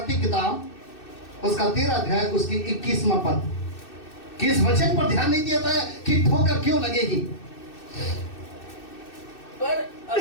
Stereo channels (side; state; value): right; late; 2.6 ms